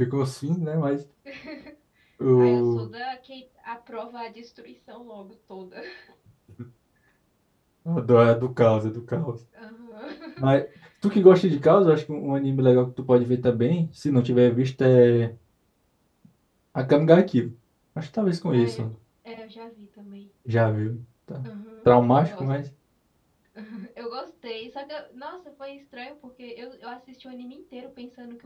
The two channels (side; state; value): both; identical; correlation 1.00